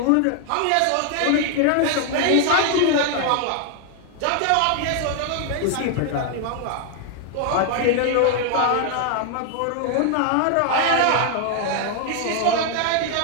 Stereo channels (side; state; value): both; different; correlation 0.00